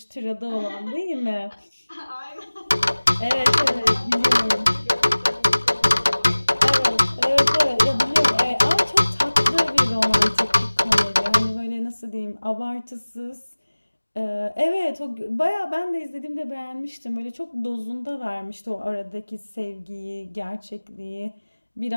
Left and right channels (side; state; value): both; inverted; correlation -1.00